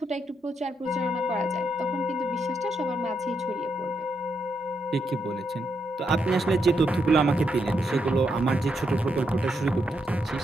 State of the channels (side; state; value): both; normal; correlation 0.80